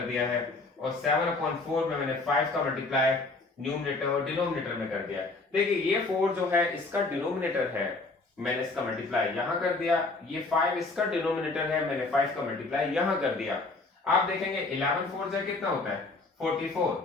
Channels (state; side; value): quieter; right; 3.4 dB